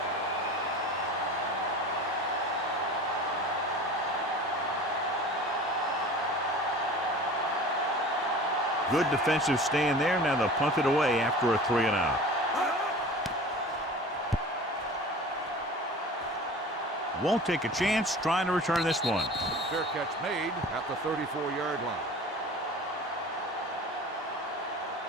Good defensive stand there. Now they'll punt it away after a 3 and out. Won't take a chance trying to return this one. Fair catch made at the 34-yard line.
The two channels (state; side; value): normal; both; correlation 0.39